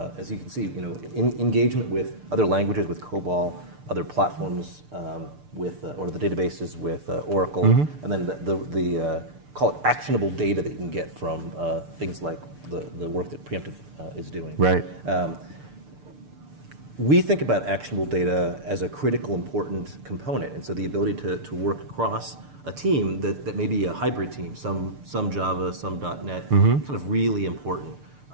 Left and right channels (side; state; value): left; late; 6.7 ms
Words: as you can see, engagement with other languages, with COBOL, other platforms or the databases with Oracle, and then the call it actionable data that you can get from things like the work that Preemptive is doing. Right. We think about actionable data as a critical, important component, and so the ability to work across a team that may be a hybrid team, some Java, some .NET, kind of really important.